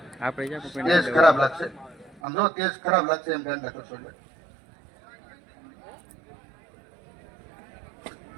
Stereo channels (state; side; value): drops out; left; at 2.2 s